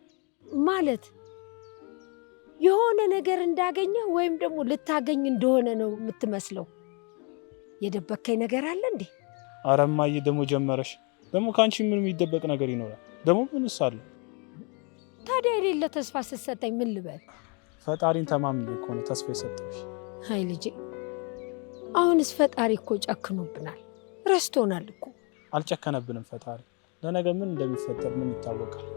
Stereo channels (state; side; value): quieter; right; 33.9 dB